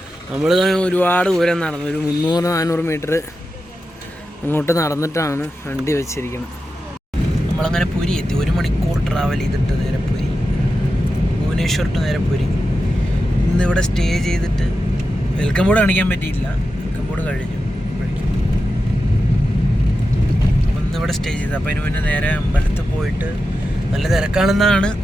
നമ്മൾ ഒരുപാട് ദൂരം നടന്നു, ഒരു 300-400 മീറ്റർ അങ്ങോട്ട് നടന്നിട്ടാണ് വണ്ടി വെച്ചിരിക്കുന്നത്. നമ്മളങ്ങനെ പുരി എത്തി. 1 മണിക്കൂർ ട്രാവൽ ചെയ്തിട്ട് നേരെ പുരി, ഭുവനേശ്വർ ടു നേരെ പുരി. ഇന്നിവിടെ സ്റ്റേ ചെയ്തിട്ട് വെൽക്കം ബോർഡ് കാണിക്കാൻ പറ്റിയില്ല, വെൽക്കം ബോർഡ് കഴിഞ്ഞു. അപ്പം ഇന്നിവിടെ സ്റ്റേ ചെയ്ത്. അപ്പോൾ അതിന് മുന്നേ നേരെ അമ്പലത്തിൽ പോയിട്ട്, നല്ല തിരക്കാണെന്നാണ്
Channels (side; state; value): both; normal; correlation 0.90